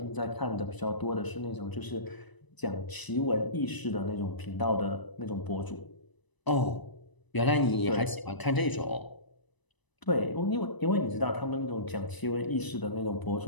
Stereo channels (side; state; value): right; late; 1.0 ms